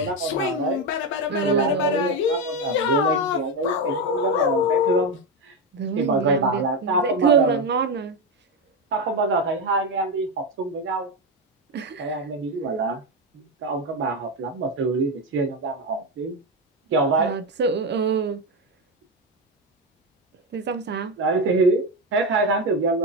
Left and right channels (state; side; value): normal; both; correlation 0.11